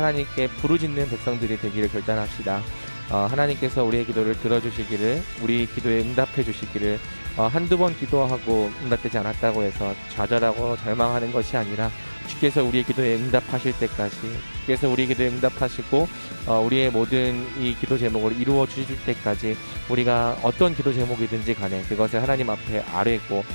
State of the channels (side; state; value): both; inverted; correlation -1.00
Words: 부르짖는 백성들이 되기를 결단합시다. 하나님께서 우리의 기도를 들어주시기를, 우리 기도에 응답해 주시기를, 한두 번 기도하고 응답되지 않았다고 해서 좌절하고 절망하는 것이 아니라 주께서 우리의 기도에 응답하실 때까지, 주께서 우리의 기도에 응답하시고 우리의 모든 이 기도 제목을 이루어 주실 때까지 우리가 어떤 기도 제목이든지 간에 그것을 하나님 앞에 아뢰고